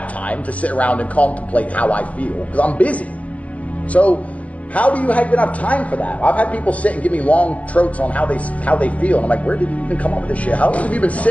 time to sit around and contemplate how I feel because I'm busy. So how do you even have time for that? I've had people sit and give me long trotes on how they feel, and I'm like, where did you even come up with this shit? How long have you been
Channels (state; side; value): late; right; 0.070 ms